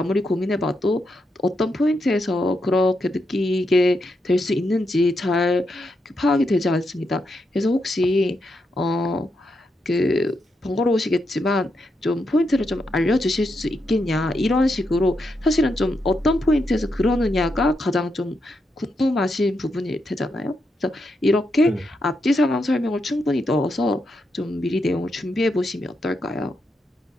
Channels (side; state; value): both; normal; correlation 0.83